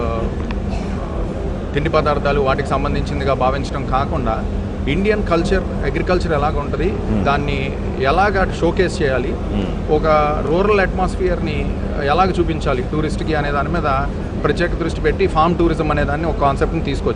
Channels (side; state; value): both; identical; correlation 1.00